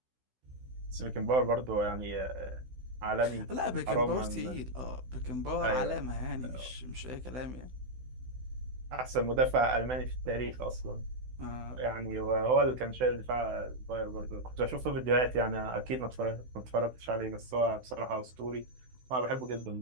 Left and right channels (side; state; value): left; late; 16 ms